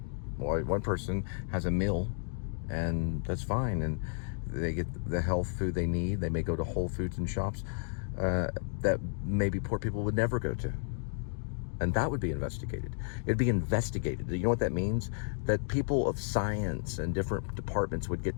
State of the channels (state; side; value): silent; right; digital silence